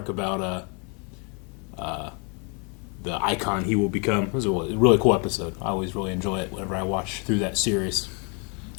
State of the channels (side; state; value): right; quieter; 35.2 dB